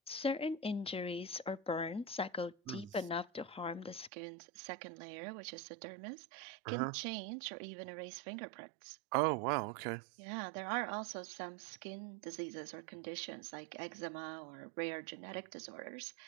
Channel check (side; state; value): left; drops out; at 4.1 s